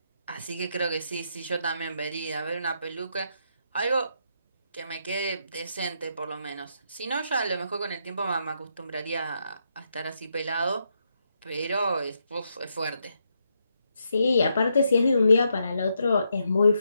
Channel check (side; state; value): both; inverted; correlation -0.80